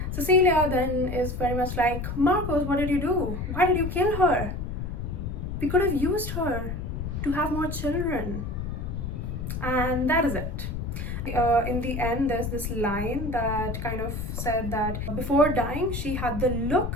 Cecilia then is very much like, Marcos, what did you do? Why did you kill her? We could have used her to have more children. And that is it. In the end, there's this line that kind of said that before dying, she had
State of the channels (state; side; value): noise; left; rumble, 4 dB below the sound